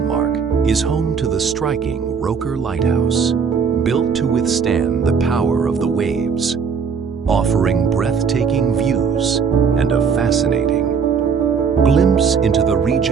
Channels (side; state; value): left; quieter; 6.0 dB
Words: is home to the striking Roker Lighthouse, built to withstand the power of the waves, offering breathtaking views and a fascinating glimpse into the